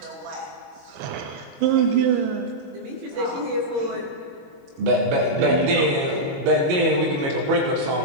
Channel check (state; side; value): late; left; 22 ms